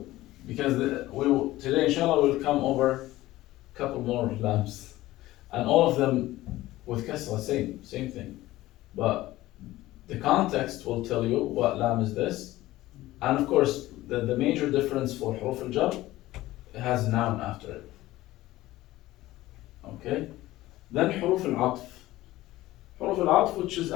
because today inshallah we'll come over a couple more lambs, and all of them with kasra, same thing, but the context will tell you what lam is this, and of course the major difference for huruf al-jar, it has noun after it. Okay, then huruf al-atf. Huruf al-atf, which is,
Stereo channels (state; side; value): quieter; right; 16.8 dB